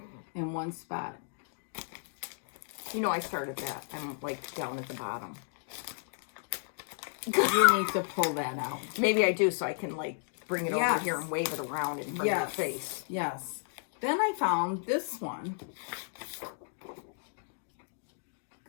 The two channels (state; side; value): silent; right; digital silence